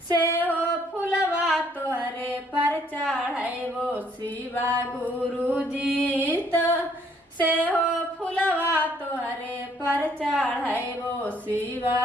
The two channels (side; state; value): both; normal; correlation 0.65